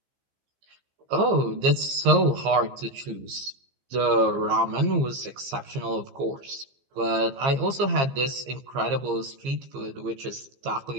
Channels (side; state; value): left; late; 15 ms